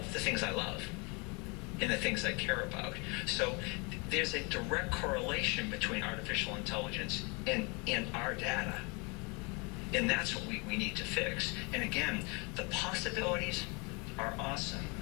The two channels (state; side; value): quieter; right; 30.7 dB